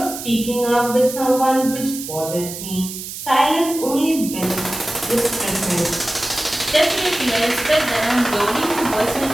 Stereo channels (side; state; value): right; noise; hiss, 9 dB below the sound